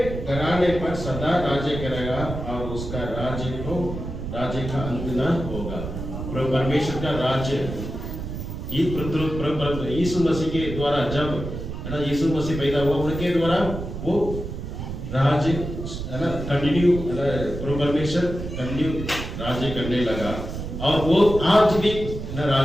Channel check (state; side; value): noise; right; rumble, 7 dB below the sound